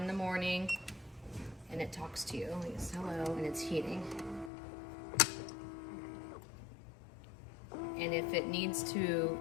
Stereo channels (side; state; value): right; drops out; at 4.5 s